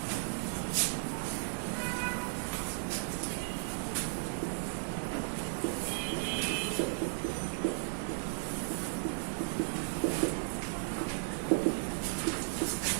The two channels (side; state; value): left; silent; digital silence